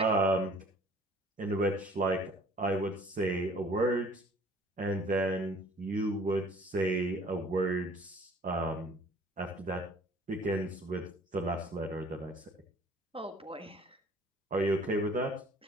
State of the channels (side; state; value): both; normal; correlation 0.54